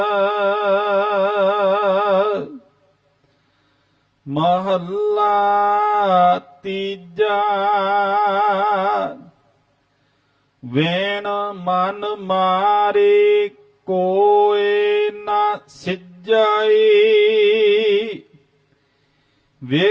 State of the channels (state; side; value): identical; both; correlation 1.00